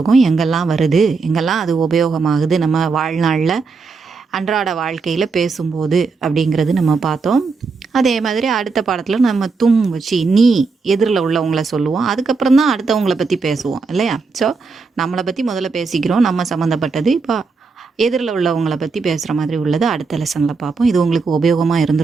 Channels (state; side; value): quieter; left; 4.5 dB